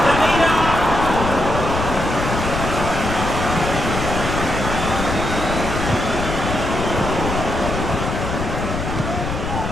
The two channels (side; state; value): left; noise; rumble, 4 dB below the sound